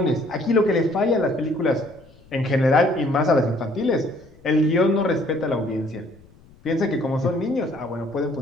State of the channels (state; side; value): noise; left; rumble, 27 dB below the sound